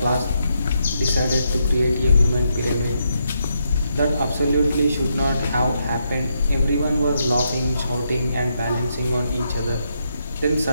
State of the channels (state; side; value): inverted; both; correlation -0.80